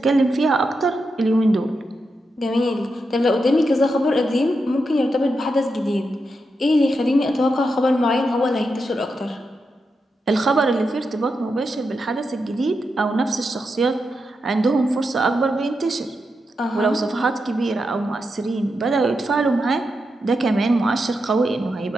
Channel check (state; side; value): normal; both; correlation 0.86